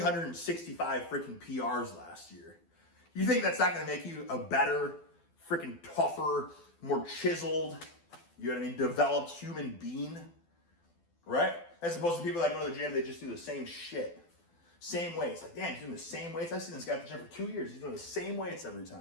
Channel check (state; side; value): late; right; 12 ms